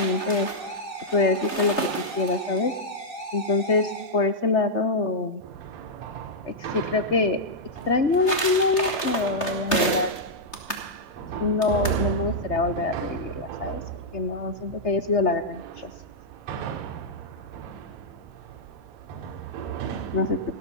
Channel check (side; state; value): right; late; 3.3 ms